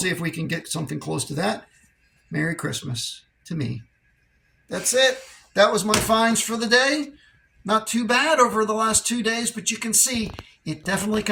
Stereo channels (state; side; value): identical; both; correlation 1.00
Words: if we can get something close to that. Merry Christmas to me. That's it. That was my finds for the day. Not too bad over the last 2 days, but you can see it definitely